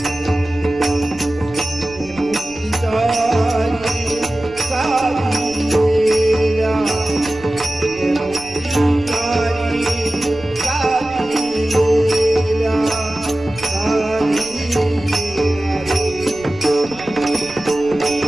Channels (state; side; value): noise; right; rumble, 19 dB below the sound